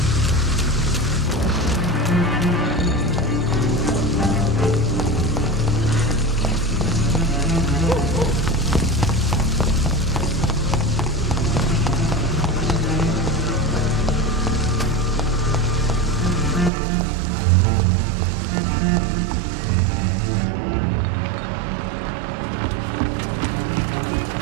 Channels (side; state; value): left; drops out; at 16.7 s